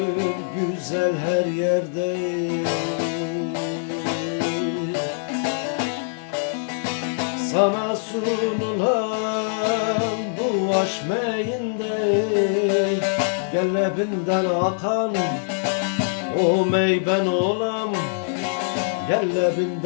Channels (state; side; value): silent; right; 55 dB below the other